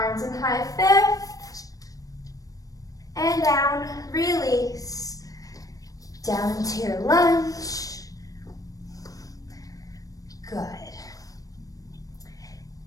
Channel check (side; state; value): right; late; 0.17 ms